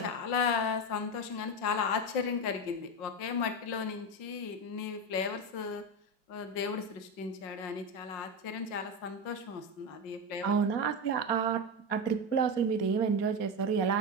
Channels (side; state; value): right; late; 5.5 ms